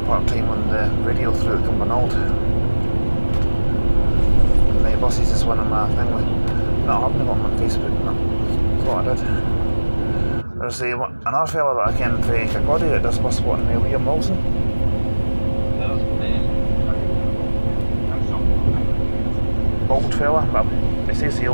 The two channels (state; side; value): inverted; both; correlation -1.00